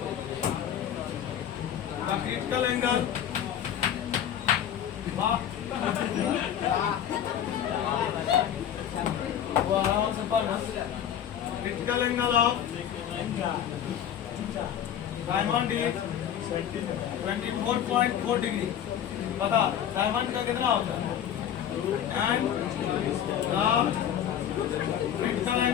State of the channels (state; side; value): quieter; right; 9.7 dB